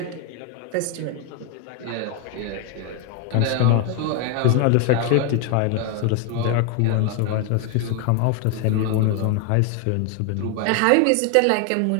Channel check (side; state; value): both; different; correlation 0.01